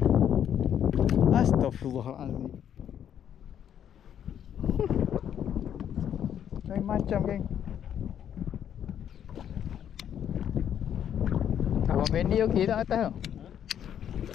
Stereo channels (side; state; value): right; quieter; 9.5 dB